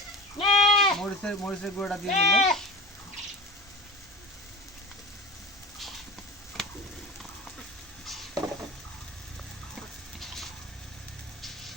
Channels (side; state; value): both; normal; correlation 0.33